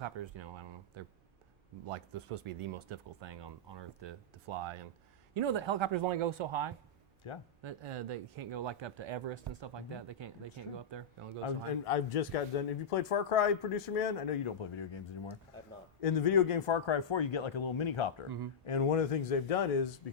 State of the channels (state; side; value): quieter; right; 3.5 dB